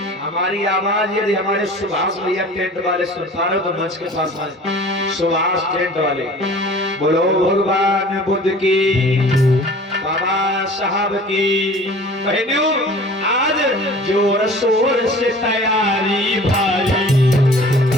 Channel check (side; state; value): both; normal; correlation 0.45